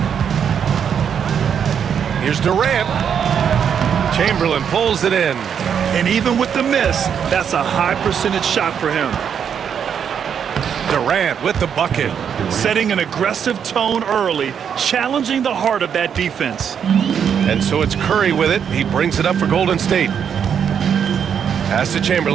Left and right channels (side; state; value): left; quieter; 7.8 dB